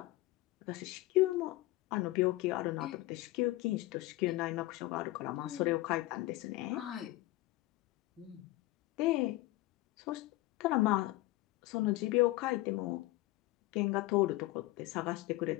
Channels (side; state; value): right; quieter; 18.6 dB